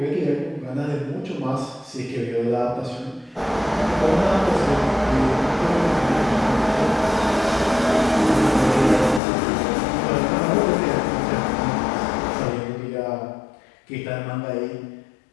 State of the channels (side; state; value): right; drops out; at 9.2 s